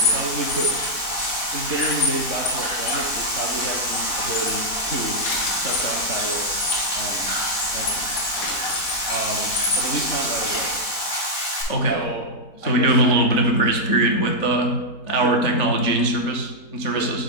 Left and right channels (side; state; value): right; late; 4.1 ms